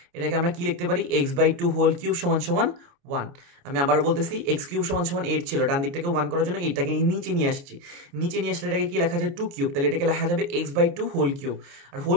এটাকে আমরা কি লিখতে পারি? এক্স বাই 2 হোল কিউব সমান সমান 1। আমি আবারও বলতেছি, এক্স কিউব সমান সমান 8 ছিল, ডান দিকটাকে 1 করার জন্য এইটাকে নিচে নিয়ে আসছি। নিচে নিয়ে আসলে এটাকে কি লেখা যায়? 2 কিউব। তাহলে এটাকে লেখা যাবে এক্স বাই 2 হোল কিউব। আর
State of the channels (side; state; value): left; late; 29 ms